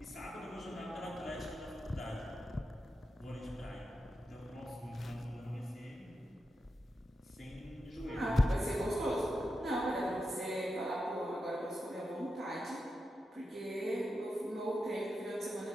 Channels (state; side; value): normal; both; correlation 0.88